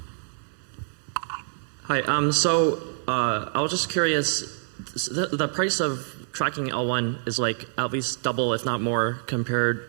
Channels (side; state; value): left; silent; 61 dB below the other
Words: Hi. I was just curious. The price of tracking L1 is like at least double, if not more, compared,